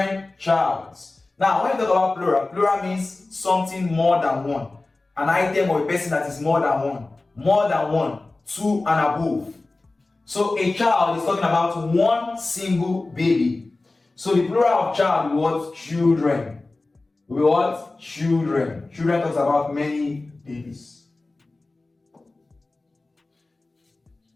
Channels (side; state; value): right; quieter; 3.2 dB